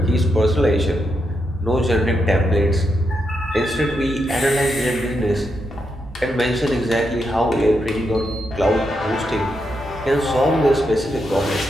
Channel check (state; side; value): normal; both; correlation 0.83